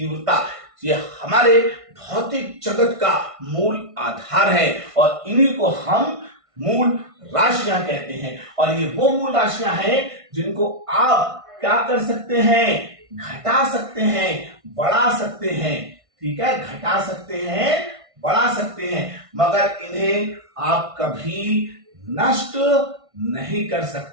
ये हमारे भौतिक जगत का मूल आधार है, और इन्हीं को हम मूल राशियां कहते हैं। और ये वो मूल राशियां हैं जिनको आप क्या कर सकते हैं, घटा सकते हैं, बढ़ा सकते हैं, ठीक है, घटा सकते हैं, बढ़ा सकते हैं, मगर इन्हें आप कभी नष्ट नहीं कर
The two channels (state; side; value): late; left; 1.5 ms